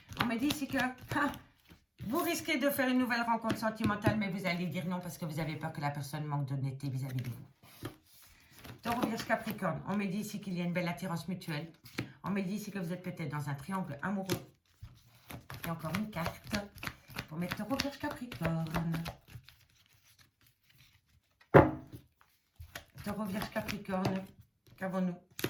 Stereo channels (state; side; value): identical; both; correlation 1.00